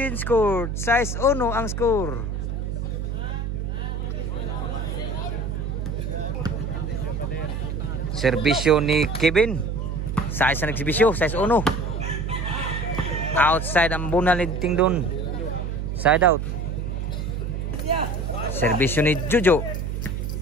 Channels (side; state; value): right; noise; hum, 3 dB below the sound